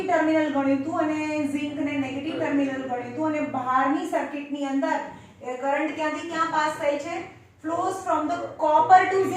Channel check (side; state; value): both; identical; correlation 1.00